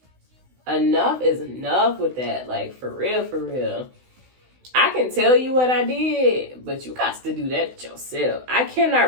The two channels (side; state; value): left; late; 16 ms